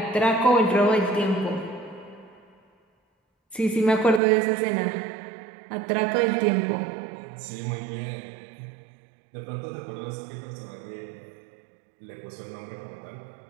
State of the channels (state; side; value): drops out; left; at 4.2 s